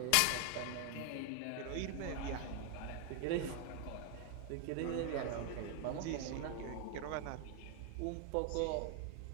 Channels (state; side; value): different; both; correlation 0.00